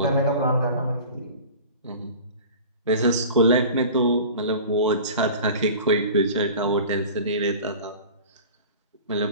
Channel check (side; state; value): both; inverted; correlation -0.39